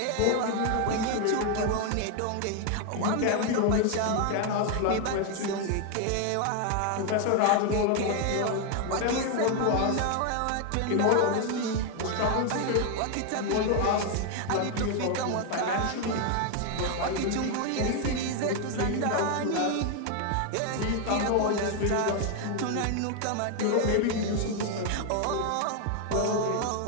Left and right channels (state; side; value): different; both; correlation 0.01